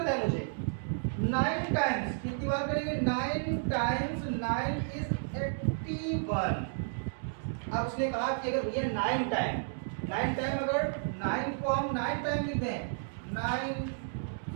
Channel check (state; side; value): silent; left; digital silence